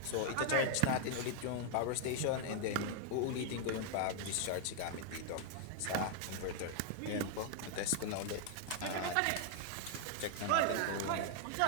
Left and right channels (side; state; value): both; different; correlation 0.00